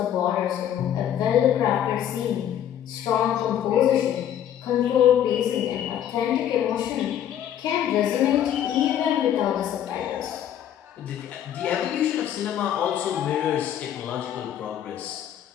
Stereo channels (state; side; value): quieter; right; 10.4 dB